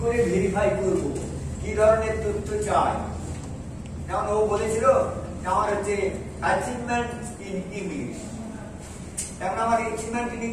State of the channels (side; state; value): both; identical; correlation 1.00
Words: করে ভেরিফাই করব, কি ধরনের তথ্য চাই। যেমন ও বলেছিল আমার হচ্ছে অ্যাচিভমেন্ট ইন ইংলিশ, তেমন আমার অ্যাচিভমেন্ট ইন